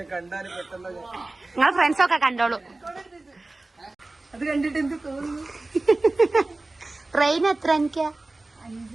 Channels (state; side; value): quieter; left; 3.0 dB